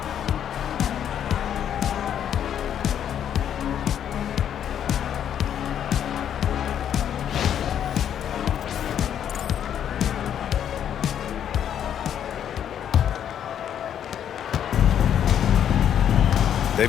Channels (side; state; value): right; quieter; 9.5 dB